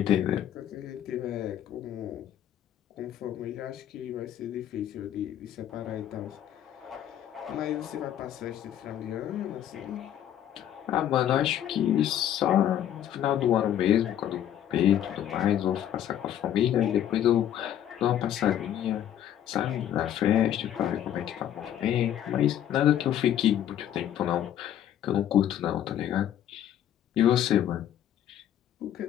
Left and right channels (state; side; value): quieter; right; 10.9 dB